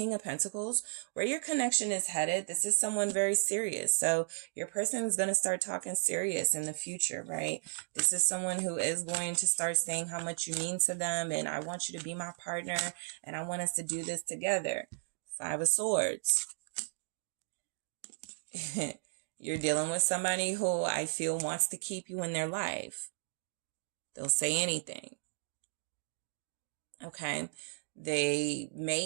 of Pentacles, where your connection is headed, this is someone very serious. So your person is going to start talking serious in the future, right? This is someone who is going to start saying how much you mean to them, and I want you to be my partner, and I want us to do this together. 5 of Swords. You're dealing with somebody who I feel wants to keep you in their life. They'll say anything. Okay. They may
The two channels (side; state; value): left; silent; digital silence